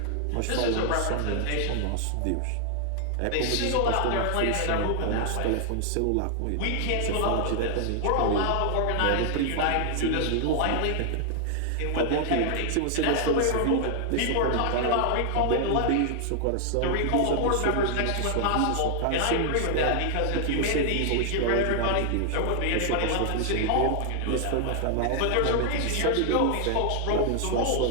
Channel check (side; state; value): both; different; correlation 0.00